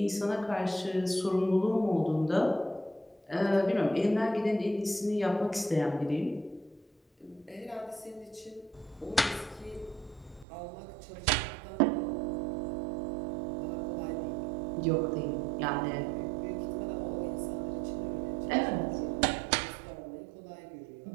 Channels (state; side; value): drops out; left; at 10.5 s